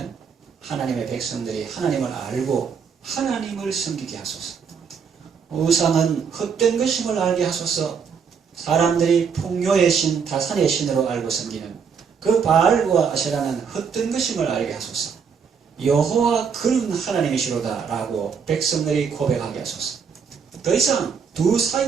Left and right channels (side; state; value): left; quieter; 6.4 dB